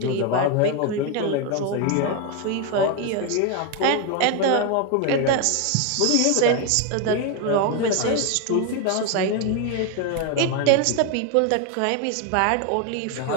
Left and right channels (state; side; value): different; both; correlation 0.01